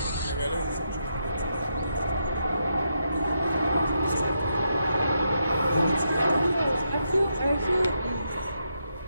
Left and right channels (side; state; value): both; inverted; correlation -0.82